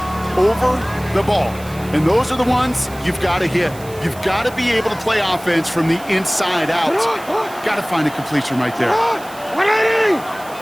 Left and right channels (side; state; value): right; noise; hiss, 20 dB below the sound